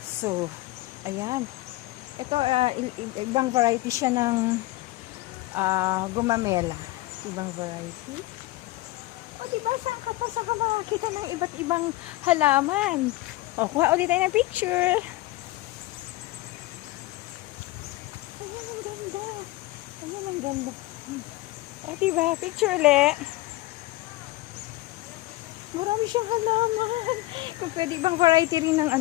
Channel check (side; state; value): right; quieter; 18.6 dB